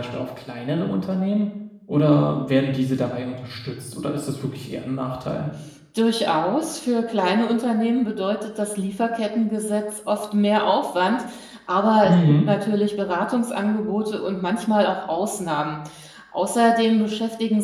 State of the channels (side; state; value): both; identical; correlation 1.00